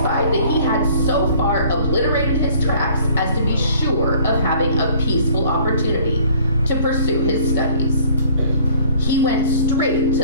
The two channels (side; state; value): both; inverted; correlation -0.55